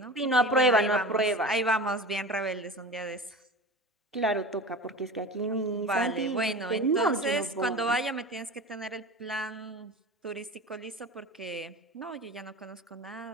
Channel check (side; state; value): both; normal; correlation 0.33